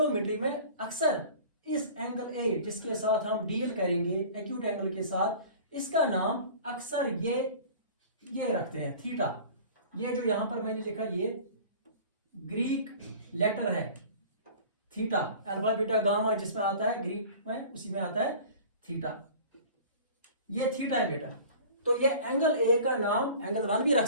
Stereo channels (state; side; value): inverted; both; correlation -0.42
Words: में अक्सर इस एंगल ए जिसके साथ हम डील करेंगे एक्यूट एंगल के साथ, इसका नाम अक्सर ये रखते हैं थीटा। ये जो यहां पर मैंने लिखा ये ग्रीक लेटर है थीटा, अल्फा बीटा गामा जिसमें आता है ग्रीक में उसी में आता है थीटा, ये थीटा है बेटा। तो ये एंगल ए का नाम एंगल 1 भी रख